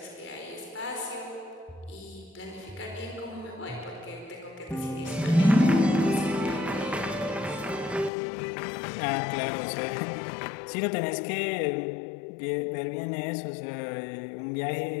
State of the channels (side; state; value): right; drops out; at 8.1 s